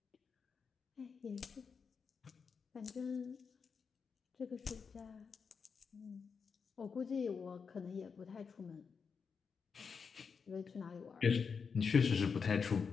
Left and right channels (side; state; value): right; quieter; 5.7 dB